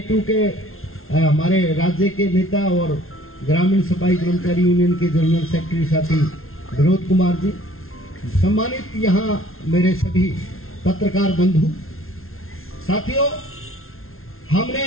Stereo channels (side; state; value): right; late; 0.62 ms